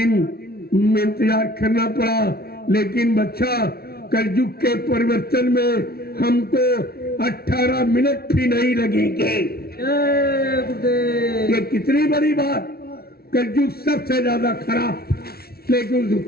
इंतजार करना पड़ा। लेकिन बच्चा, कलयुग के परिवर्तन में हमको 18 मिनट भी नहीं लगेंगे। ये कितनी बड़ी बात। कलयुग सबसे ज्यादा खराब, लेकिन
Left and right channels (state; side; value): late; right; 0.44 ms